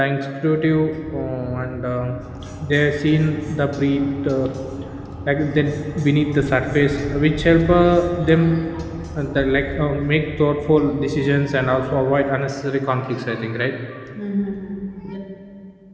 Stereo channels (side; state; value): both; identical; correlation 1.00